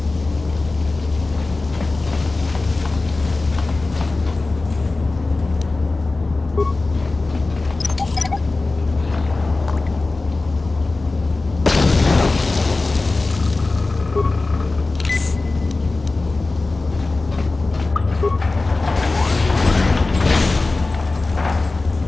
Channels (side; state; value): right; quieter; 3.4 dB